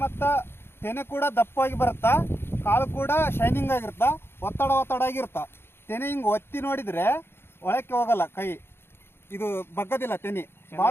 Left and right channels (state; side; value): late; right; 0.11 ms